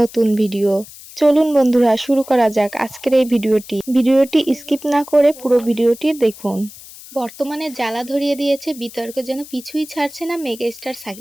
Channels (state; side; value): noise; left; hiss, 18 dB below the sound